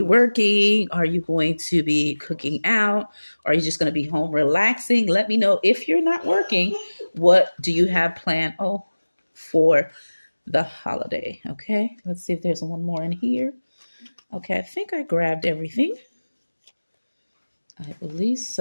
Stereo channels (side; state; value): both; inverted; correlation -1.00